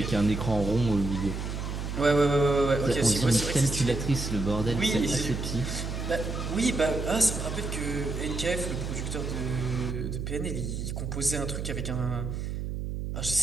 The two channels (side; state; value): right; noise; hum, 4 dB below the sound